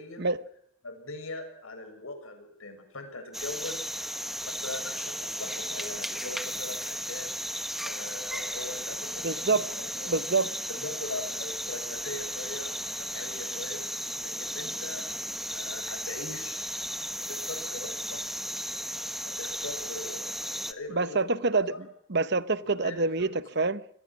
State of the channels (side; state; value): both; normal; correlation 0.04